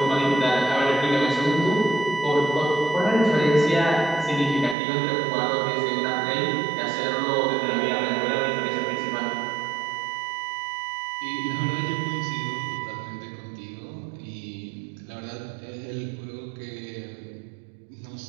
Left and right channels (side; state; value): left; drops out; at 4.8 s